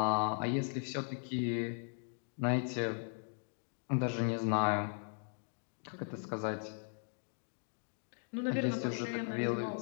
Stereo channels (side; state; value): right; silent; 52 dB below the other